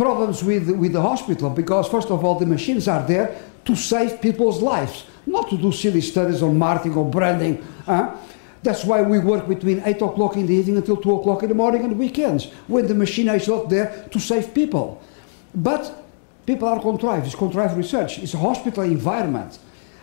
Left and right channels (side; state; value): right; silent; digital silence